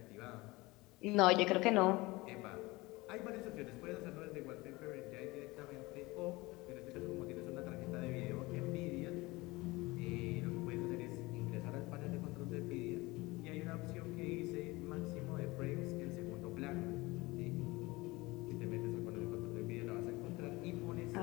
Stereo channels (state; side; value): quieter; right; 22.0 dB